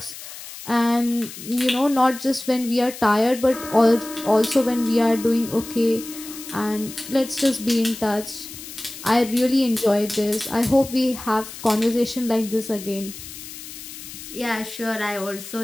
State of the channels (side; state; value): left; noise; hiss, 13 dB below the sound